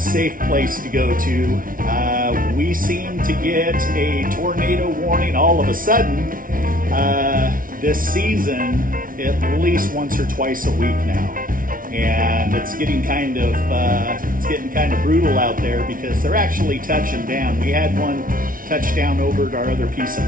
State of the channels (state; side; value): late; left; 0.40 ms